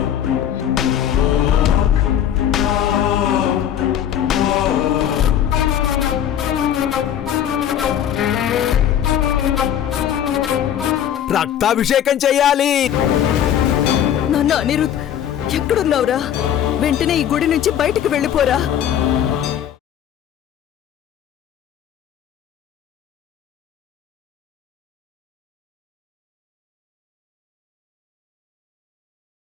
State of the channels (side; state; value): right; quieter; 10.0 dB